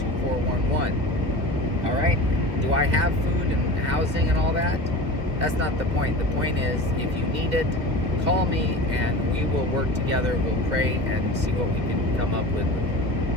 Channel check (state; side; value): late; left; 1.9 ms